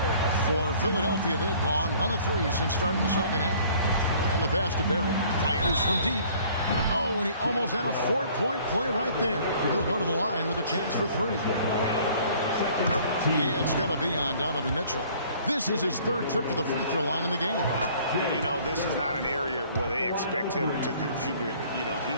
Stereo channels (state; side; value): inverted; both; correlation -0.55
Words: For Philadelphia, they've gone 1 of 3 since starting the second half. And the pass to Barrett. Fires from deep. Oh, and he almost had a 4-point play right there. He'll go to the line with a chance for 3. It's going to be on Donovan Mitchell. This is his 3rd trip to the free throw line in the game. You know, this is not an area where they expect him to contribute. You know,